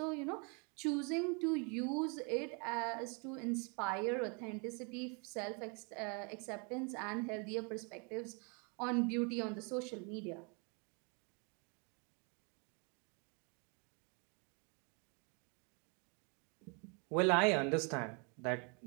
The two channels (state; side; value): quieter; left; 34.2 dB